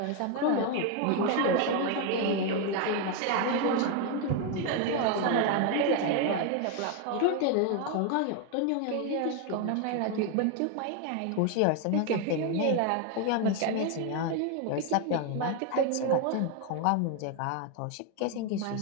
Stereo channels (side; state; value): both; different; correlation 0.01